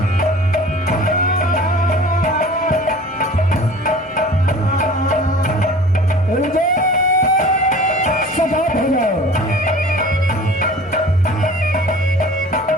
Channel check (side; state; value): both; normal; correlation 0.43